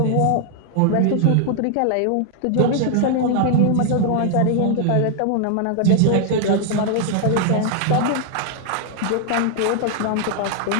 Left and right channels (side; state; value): both; different; correlation 0.00